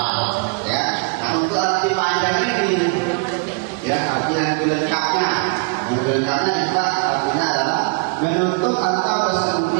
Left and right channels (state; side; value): quieter; left; 32.0 dB